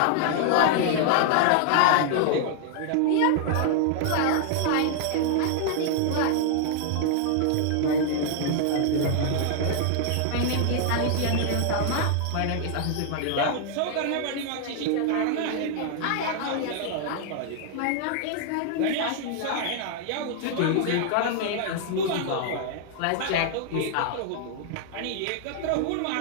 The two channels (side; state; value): both; different; correlation 0.00